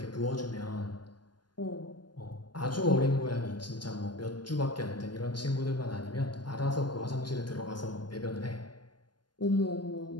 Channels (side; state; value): right; late; 0.71 ms